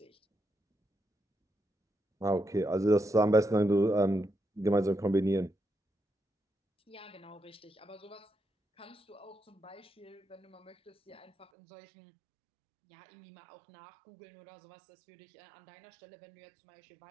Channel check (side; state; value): left; drops out; at 11.5 s